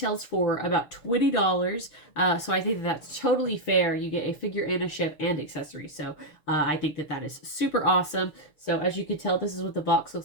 for about $20, so I think that's totally fair. You get a figure and a ship and accessories, so I think that is super awesome. So as you can tell, this is what the box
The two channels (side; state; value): right; late; 6.6 ms